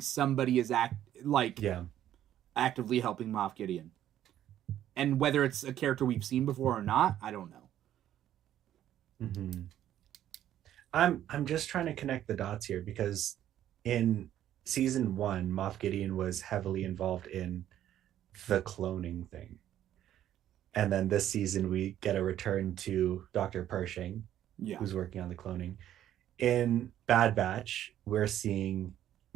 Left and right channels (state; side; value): quieter; left; 11.7 dB